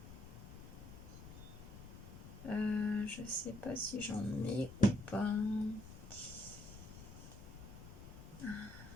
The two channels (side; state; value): left; noise; rumble, 13 dB below the sound